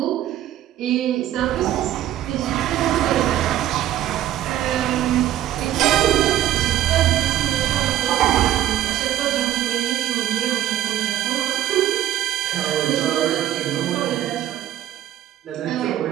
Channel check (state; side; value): quieter; left; 12.4 dB